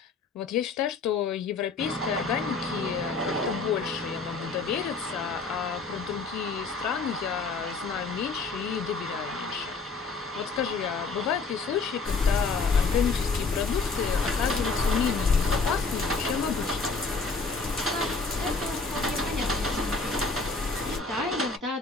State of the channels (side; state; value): right; quieter; 4.3 dB